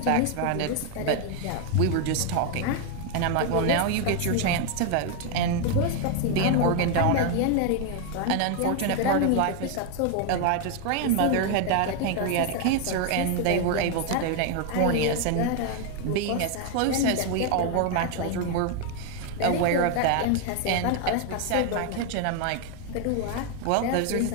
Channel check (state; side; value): different; both; correlation 0.01